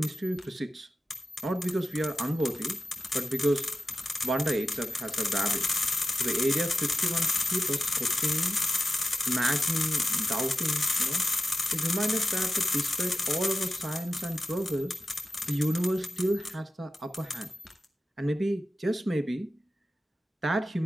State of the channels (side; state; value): both; normal; correlation 0.93